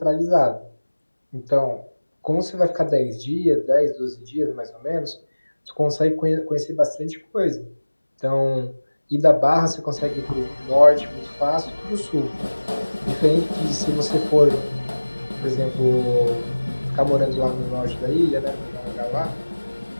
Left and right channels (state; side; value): inverted; both; correlation -1.00